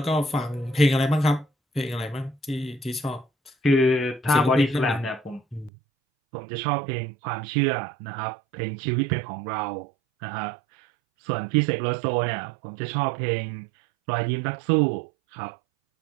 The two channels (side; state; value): left; drops out; at 5.7 s